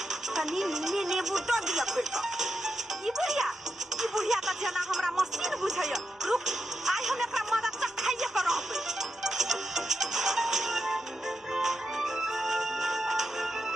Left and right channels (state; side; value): normal; both; correlation 0.87